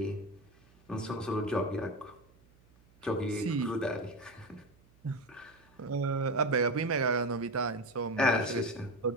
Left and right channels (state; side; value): noise; right; hum, 29 dB below the sound